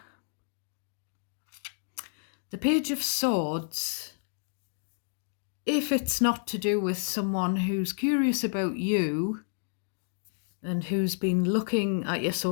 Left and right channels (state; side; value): silent; right; digital silence